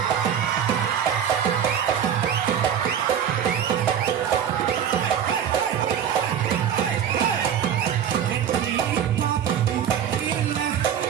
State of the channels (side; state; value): left; quieter; 8.8 dB